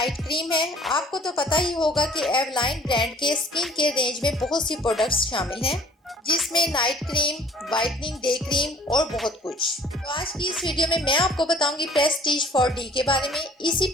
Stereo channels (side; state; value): both; normal; correlation 0.52